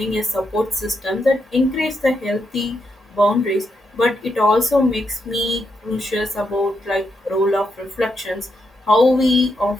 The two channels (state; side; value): normal; both; correlation 0.81